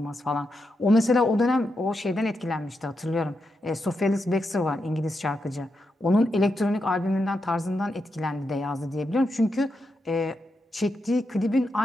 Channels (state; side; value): normal; both; correlation 0.85